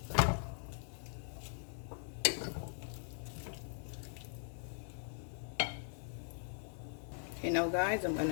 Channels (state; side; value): silent; right; digital silence